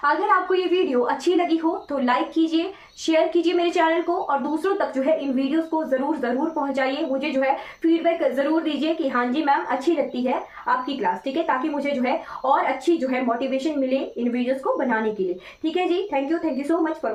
अगर आपको ये वीडियो अच्छी लगी हो तो लाइक कीजिए, शेयर कीजिए मेरे चैनल को और दूसरों तक जो है इन वीडियोस को जरूर पहुंचाइए। मुझे जो है फीडबैक जरूर दीजिए कि हाँ जी मैम अच्छी लगती है आपकी क्लास। ठीक है, ताकि मुझे जो है और अच्छी जो है मोटिवेशन मिले इन वीडियोस को बनाने के लिए। ठीक है जी, thank you so much for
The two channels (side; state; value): both; identical; correlation 1.00